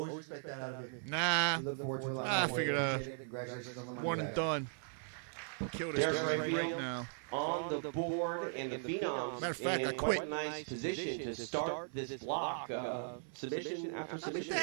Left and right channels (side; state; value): left; silent; 52 dB below the other